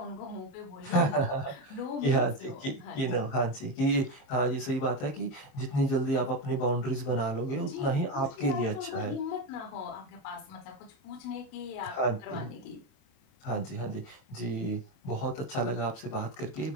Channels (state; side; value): late; right; 27 ms